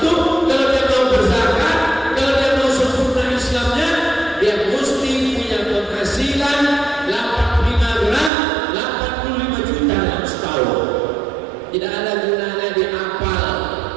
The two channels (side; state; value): left; drops out; at 8.3 s